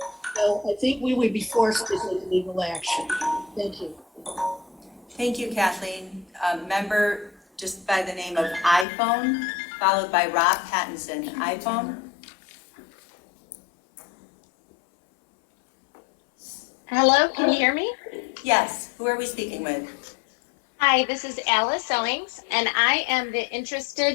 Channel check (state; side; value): drops out; right; at 8.8 s